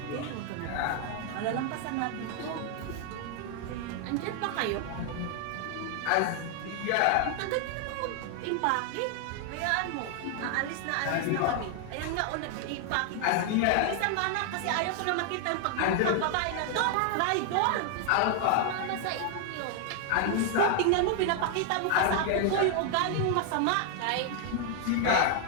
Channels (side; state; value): both; different; correlation 0.00